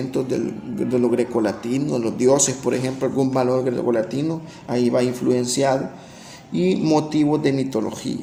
de lo grecolatino, los dioses, por ejemplo, algún valor grecolatino, ahí va influenciado, y motivos de mitología.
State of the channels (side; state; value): both; identical; correlation 1.00